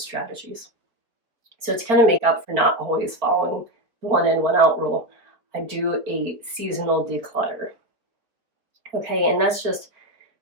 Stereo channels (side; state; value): left; late; 4.2 ms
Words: So to kind of make up for not always following the 1 in, 1 out rule, I do a seasonal declutter. Okay, and that's just